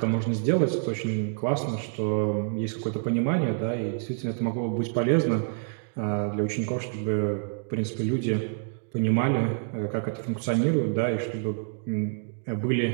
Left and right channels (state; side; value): silent; left; 60 dB below the other